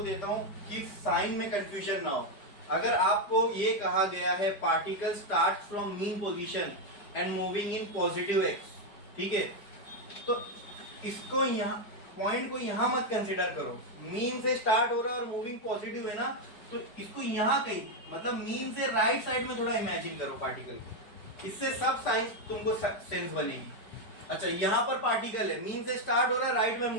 देता हूं कि साइन में कंफ्यूजन ना हो। अगर आपको ये कहा गया है particle start from mean position and moving in positive x, ठीक है, तो इसको यहाँ पॉइंट को यहाँ मत कंसिडर करो। मीन से स्टार्ट हो रहा है और मूविंग पॉजिटिव है ना, तो इसको यहाँ कहीं मतलब मीन से राइट साइड में थोड़ा इमेजिन करो पार्टिकल, इससे सब साइंस तुमको सेंस बनेगी। अच्छा, यहाँ पर पार्टिकल है, मीन से स्टार्ट हो रहा है, राइट में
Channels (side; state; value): right; late; 4.9 ms